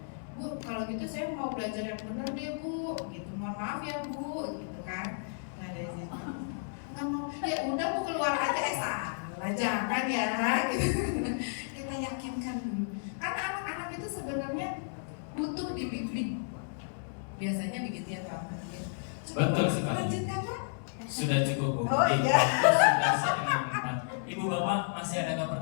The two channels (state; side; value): silent; right; digital silence